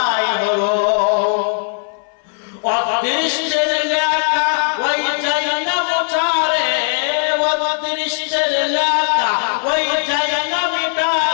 হলো। অদৃষ্টের লেখা ওই যাই না মোছারে, অদৃষ্টের লেখা ওই যাই না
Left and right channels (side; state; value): right; silent; 60 dB below the other